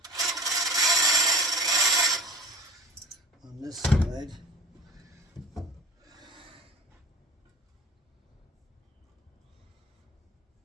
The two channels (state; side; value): normal; both; correlation 0.41